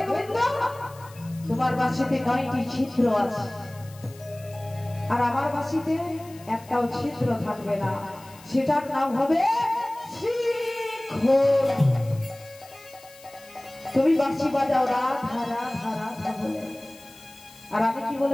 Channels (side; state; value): left; noise; hiss, 22 dB below the sound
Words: গোবিন্দ তোমার বাঁশিতে 9টি ছিদ্র আছে, আর আমার বাঁশিতে একটাও ছিদ্র থাকবে না, সেটার নাম হবে শ্রীখোল। তুমি বাঁশি বাজাও রাধা রাধা রাধা বলে, আর আমি কি